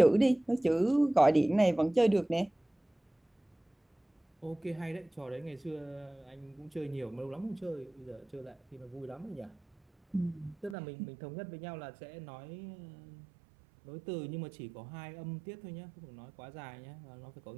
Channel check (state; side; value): drops out; left; at 10.8 s